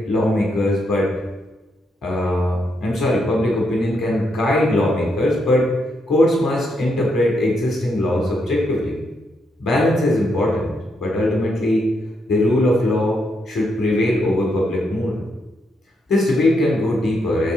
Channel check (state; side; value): normal; both; correlation 0.79